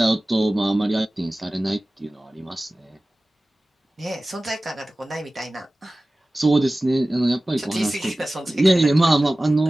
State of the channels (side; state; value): both; normal; correlation 0.97